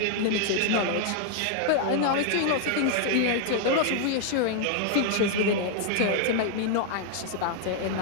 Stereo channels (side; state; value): both; different; correlation 0.00